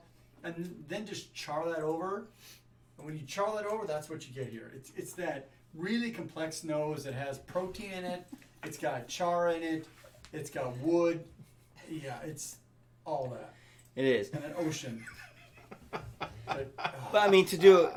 and then just char that over. And when you char that over, that's what you get here. It's that really complex nose that has protein in it. It's got char in it. It's got wood. Yeah, it's all that. It is. And an ocean. But, But I mean, to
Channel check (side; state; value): both; identical; correlation 1.00